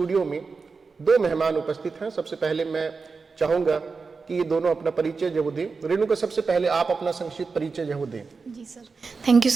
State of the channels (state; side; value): quieter; left; 4.6 dB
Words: में दो मेहमान उपस्थित हैं। सबसे पहले मैं चाहूँगा कि ये दोनों अपना परिचय जो दें। रेणुका, सबसे पहले आप अपना संक्षिप्त परिचय जो दें। जी sir, thank you